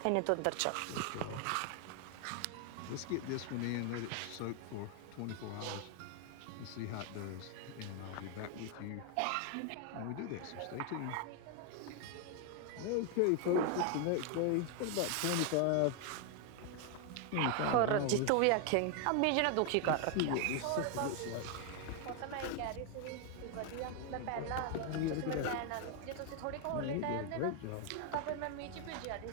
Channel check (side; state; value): both; different; correlation 0.01